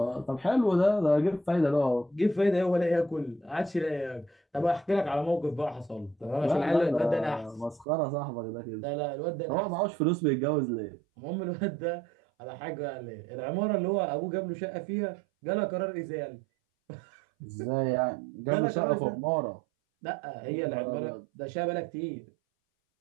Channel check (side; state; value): left; drops out; at 7.9 s